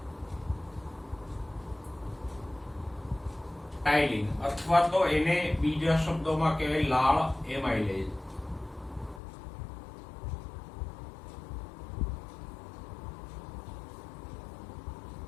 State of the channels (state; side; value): drops out; right; at 9.2 s